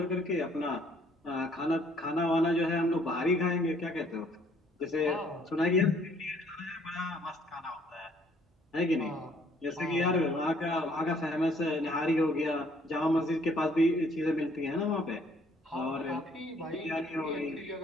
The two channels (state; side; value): normal; both; correlation 0.62